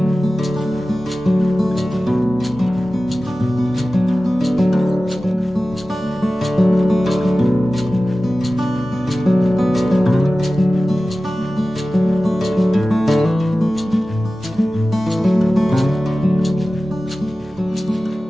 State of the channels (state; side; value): normal; both; correlation 0.95